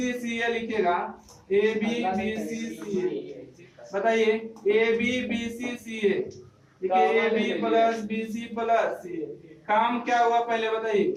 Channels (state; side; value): identical; both; correlation 1.00